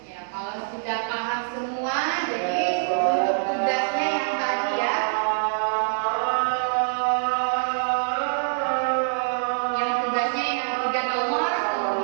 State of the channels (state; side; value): silent; left; digital silence